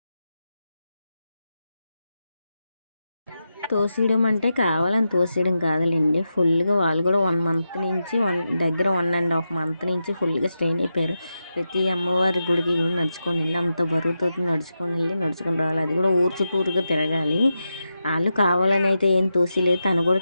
తోసేయడం అంటే కావాలని తోసేయడం కాదులేండి, ఫుల్గా వాళ్ళు కూడా 1 month నుంచి 1.5 month నుంచి ఫుల్గా స్ట్రెయిన్ అయిపోయారు. ప్రతి అమ్మవారి గుడికి కూడా నడుచుకొని వెళ్ళి, అంత బరువుతో నడుచుకొని రావాలి. అది కూడా ఊరు చుట్టూరుగా తిరగాలి. వాళ్ళు కావాలని అయితే ఏం తోసిలేదు, తను కూడా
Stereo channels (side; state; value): both; inverted; correlation -0.89